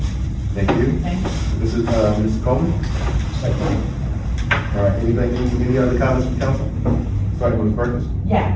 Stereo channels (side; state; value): both; identical; correlation 1.00